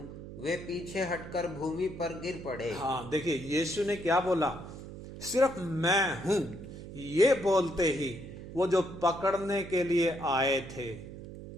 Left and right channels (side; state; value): right; noise; hum, 12 dB below the sound